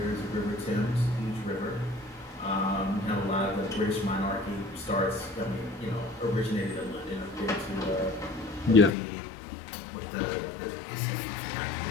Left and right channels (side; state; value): right; drops out; at 8.9 s